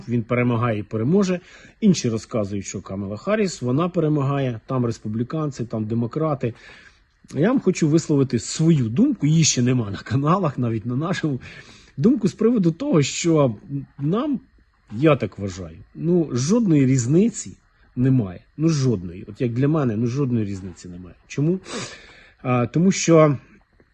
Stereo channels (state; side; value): identical; both; correlation 1.00